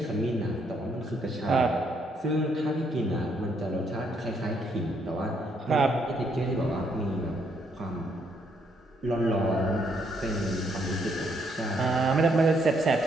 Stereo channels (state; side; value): normal; both; correlation 0.72